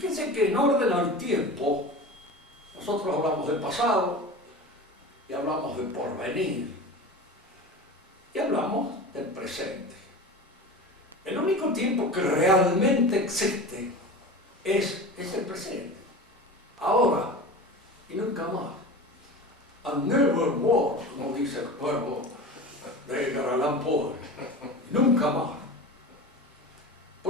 que en orden al tiempo, nosotros hablamos del pasado, y hablamos del porvenir, y hablamos del presente. El único tiempo que realmente existe es el presente. Ahora y nunca más. And never more, como dice el pueblo de Edgar Allan Poe. Nunca más.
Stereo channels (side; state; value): both; normal; correlation 0.32